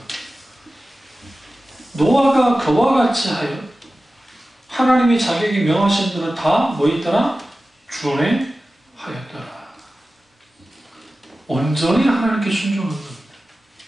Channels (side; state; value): both; normal; correlation 0.95